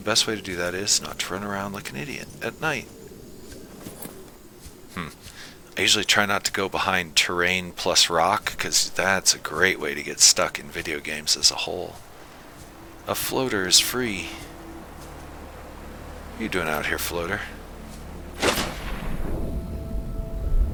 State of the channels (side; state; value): both; identical; correlation 1.00